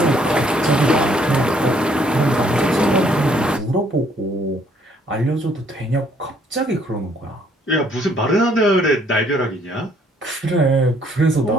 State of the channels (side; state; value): both; normal; correlation 0.65